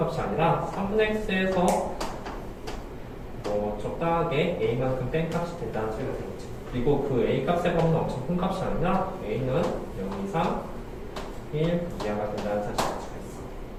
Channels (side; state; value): both; identical; correlation 1.00